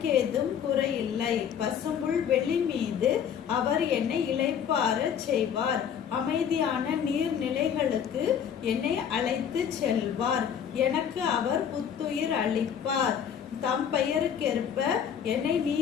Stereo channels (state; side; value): quieter; right; 8.3 dB